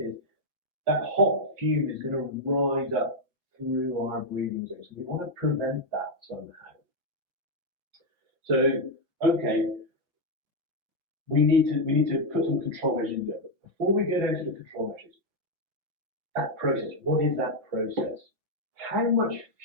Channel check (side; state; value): left; late; 5.4 ms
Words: is, that hot fume is going to rise up through our breathing zone. So we want to prevent that somehow. So, okay, we need to put some control measures in there. But before we get into the control measures, that process, what is that process? How much